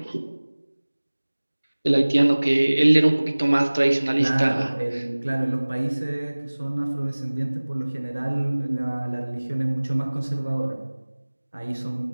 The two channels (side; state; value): both; inverted; correlation -1.00